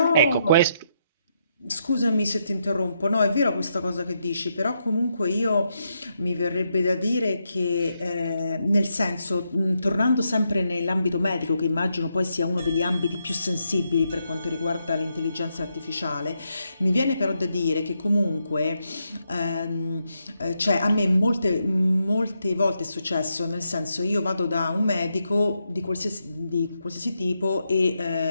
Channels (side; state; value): both; inverted; correlation -0.81